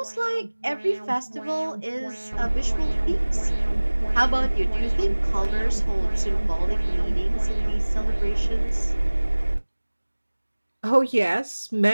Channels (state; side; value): inverted; both; correlation -1.00